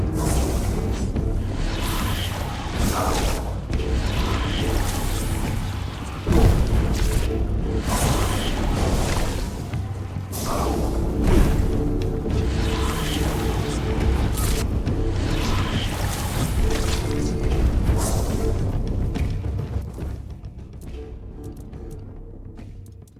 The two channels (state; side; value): identical; both; correlation 1.00